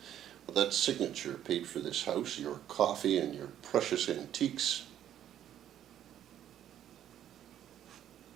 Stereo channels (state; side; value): quieter; left; 10.9 dB